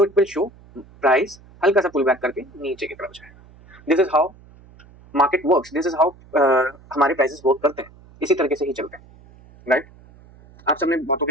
इट विल शो प्राइस हल्का सा पुल बैक करके नीचे की तरफ जाएगा। This is how market works, this is how हमारे प्राइसेस वर्क करते हैं, इसी तरीके से ही चलते हैं, राइट। आप सबने बहुतों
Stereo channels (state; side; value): noise; right; hum, 25 dB below the sound